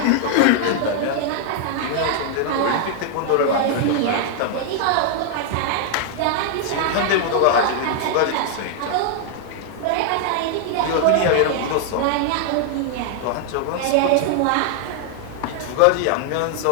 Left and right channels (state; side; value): different; both; correlation 0.00